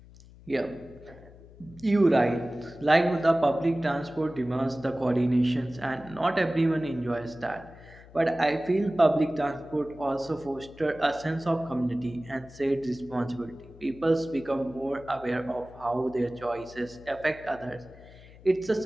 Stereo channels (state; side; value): noise; left; hum, 21 dB below the sound